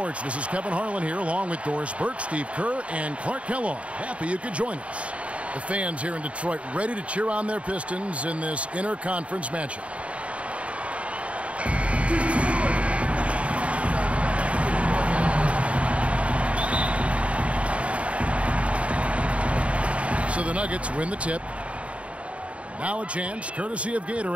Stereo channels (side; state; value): left; late; 0.063 ms